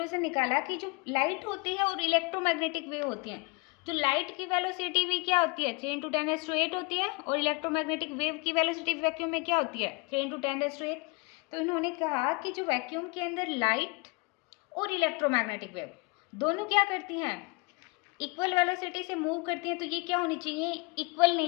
निकाला कि जो लाइट होती है और इलेक्ट्रोमैग्नेटिक वेव होती हैं, जो लाइट की वेलोसिटी भी क्या होती है? 3 इंटू 10⁸ होती है, और इलेक्ट्रोमैग्नेटिक वेव की वेलोसिटी वैक्यूम में क्या होती है? 3 इंटू 10⁸। तो इन्होंने कहा कि जो वैक्यूम के अंदर लाइट और इलेक्ट्रोमैग्नेटिक वेव दोनों क्या करती हैं? इक्वल वेलोसिटी से मूव करती हैं। तो ये क्या होनी चाहिए? इक्वल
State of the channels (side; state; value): right; quieter; 28.5 dB